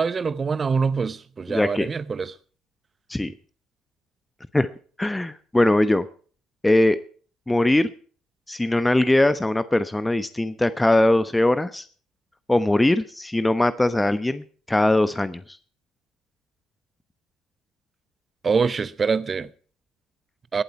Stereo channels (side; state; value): both; normal; correlation 0.95